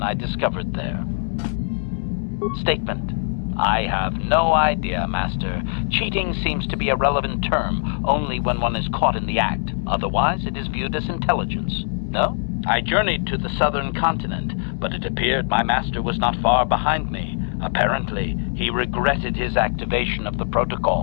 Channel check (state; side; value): silent; right; digital silence